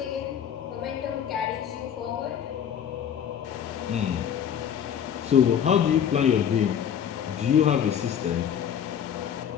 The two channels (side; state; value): right; quieter; 8.8 dB